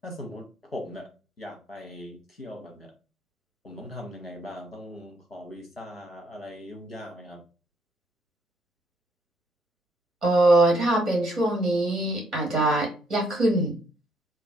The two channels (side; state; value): both; normal; correlation 0.70